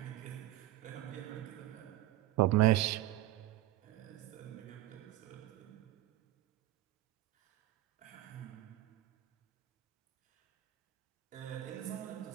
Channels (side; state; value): left; quieter; 15.8 dB